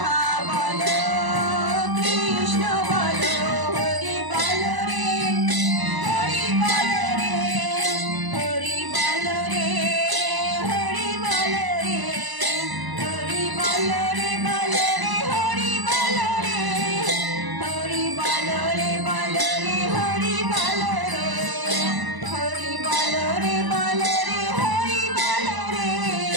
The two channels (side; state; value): left; late; 1.0 ms